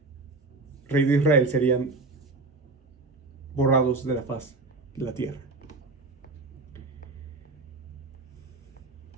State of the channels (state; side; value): quieter; left; 3.5 dB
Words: rey de Israel, serían borrados de la faz de la tierra.